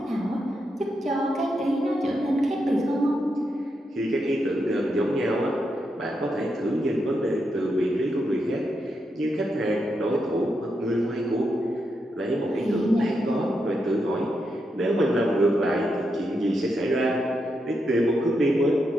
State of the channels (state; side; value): normal; both; correlation 0.83